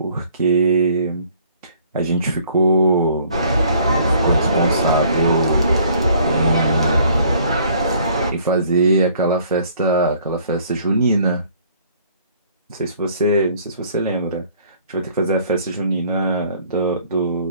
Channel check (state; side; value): inverted; both; correlation -0.59